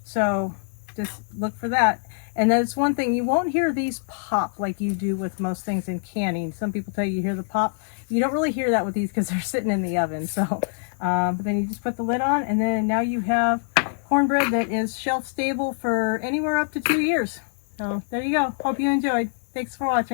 So just look for that. And that's one thing, you won't hear these pop like you do with most things in canning. Some people tell you hear the pop. You don't really hear that with these because they're sitting in the oven. So, but then you just put the lid on, and then now you have cornbread that is shelf stable for anywhere up to 2 years. So there you go. Hope you enjoyed. Thanks for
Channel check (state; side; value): silent; right; digital silence